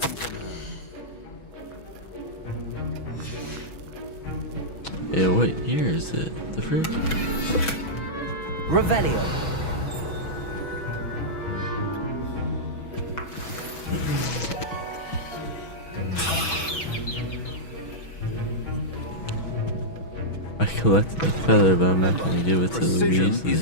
Yeah, what year is it? The frick? Revelio. I collected the feather, but I'm not gonna give it to the Precision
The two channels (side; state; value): right; late; 6.2 ms